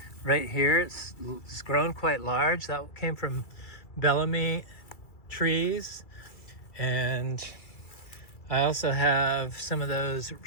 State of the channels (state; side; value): late; right; 2.3 ms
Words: Right here, it's grown quite large. That came from Bellamy trees. And I also have some of those